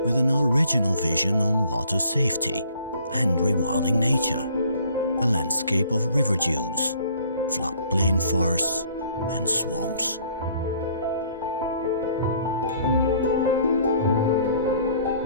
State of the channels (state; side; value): inverted; both; correlation -0.58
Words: with an original vision on water safety and rewilding nature, a landscape of river dunes, floodplain forests and swamps.